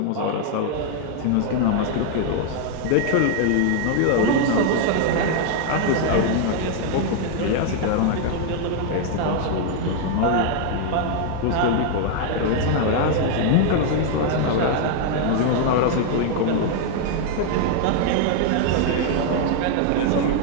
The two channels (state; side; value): different; both; correlation 0.00